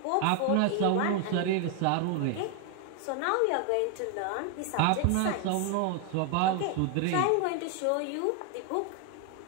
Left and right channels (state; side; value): different; both; correlation 0.01